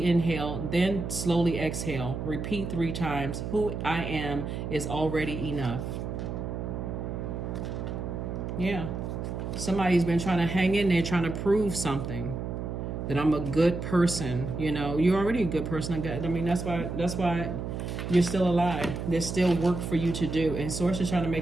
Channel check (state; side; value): noise; right; hum, 5 dB below the sound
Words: inhale, then slowly exhale. Repeat 3 times. Who I am is already enough. Yeah. Somebody's been trying to hang in there, trying to prove something. That I'm a good person. You're already a good person. I mean, that's why you're still alive. There's still work for you to do. And Source is trying to